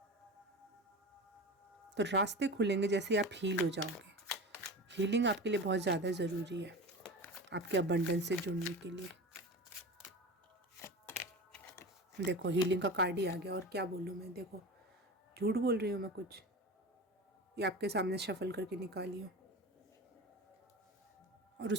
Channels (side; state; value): both; normal; correlation 0.30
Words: तो रास्ते खुलेंगे जैसे आप हील हो जाओगे। हीलिंग आपके लिए बहुत ज़्यादा ज़रूरी है, आपके अबंडेंस से जुड़ने के लिए। देखो हीलिंग का कार्ड ही आ गया, और क्या बोलूँ मैं, देखो झूठ बोल रही हूँ मैं कुछ, ये आपके सामने शफल करके निकाली हूँ। और